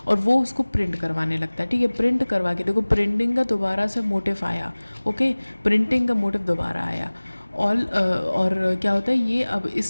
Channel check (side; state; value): both; inverted; correlation -1.00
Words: और वो उसको प्रिंट करवाने लगता है, ठीक है। प्रिंट करवा के देखो, प्रिंटिंग का दोबारा से मोटिव आया, ओके, प्रिंटिंग का मोटिव दोबारा आया। और क्या होता है, ये अब